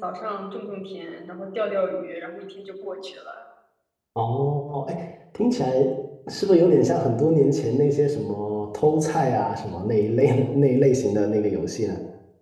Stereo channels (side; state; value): both; identical; correlation 1.00